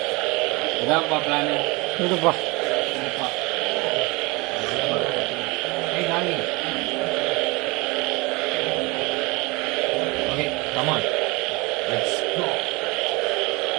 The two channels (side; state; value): left; quieter; 25.7 dB